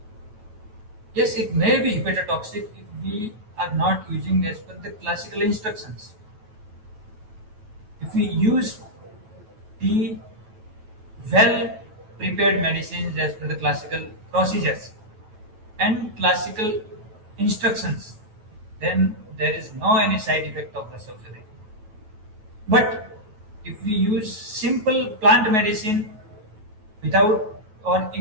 Yes, it may be hepatotoxic if we are not using as per the classical instructions. If we use the well prepared medicines as per the classical procedures and classical instructions, then there is no any side effect of Rasaushadhi. But if we use simple plant medicine without or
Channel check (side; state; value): left; late; 9.3 ms